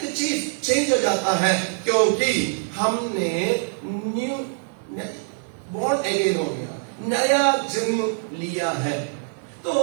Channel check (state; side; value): silent; left; 63 dB below the other